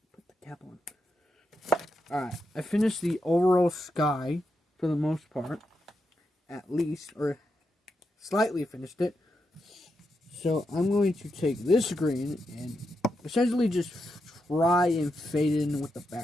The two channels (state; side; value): normal; both; correlation 0.85